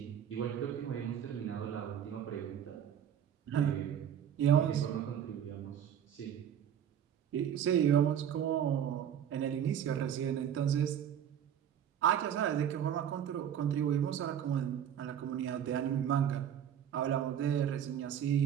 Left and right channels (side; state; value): left; quieter; 9.4 dB